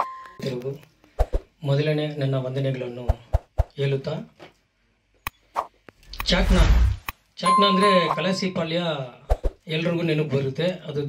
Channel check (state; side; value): identical; both; correlation 1.00